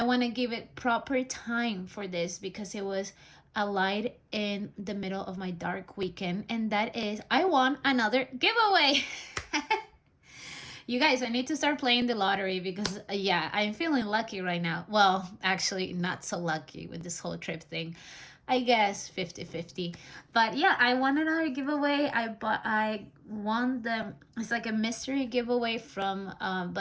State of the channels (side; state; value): both; identical; correlation 1.00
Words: want to give it proper time for this because it was a light in the middle of my dark weekend, and that is I won another giveaway. You guys, I need to start playing the lottery because, yeah, I'm feeling lucky right now. Well, actually, not so lucky with this whole trip thing. I guess 50-50. But yeah, I won another giveaway. I won it's like a mystery giveaway from